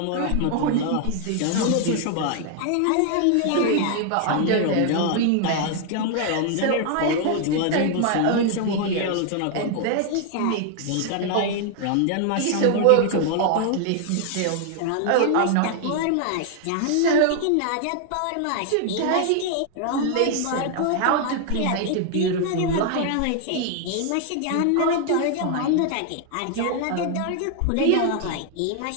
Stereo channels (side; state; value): both; different; correlation 0.00